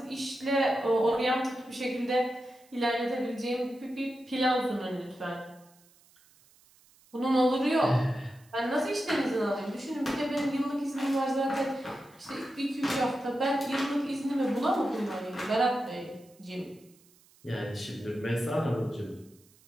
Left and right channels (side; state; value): right; noise; hiss, 29 dB below the sound